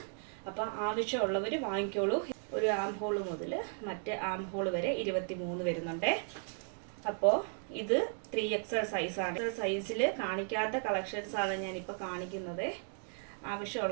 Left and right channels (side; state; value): left; silent; 54 dB below the other